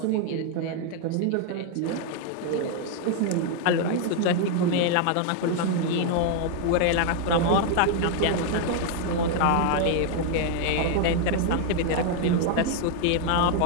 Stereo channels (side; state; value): both; different; correlation 0.00